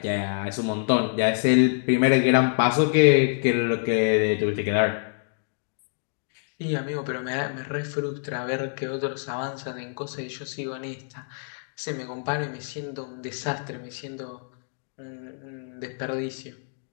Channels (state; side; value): silent; right; digital silence